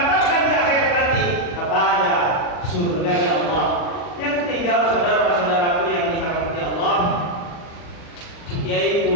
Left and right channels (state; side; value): late; right; 40 ms